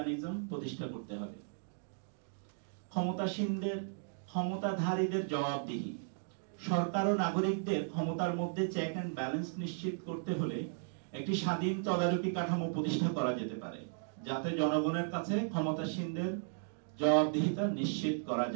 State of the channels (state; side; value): silent; left; digital silence